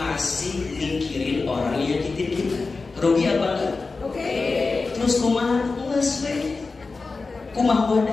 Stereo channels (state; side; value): quieter; right; 4.0 dB